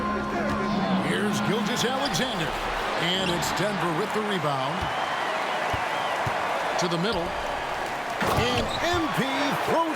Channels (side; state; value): both; identical; correlation 1.00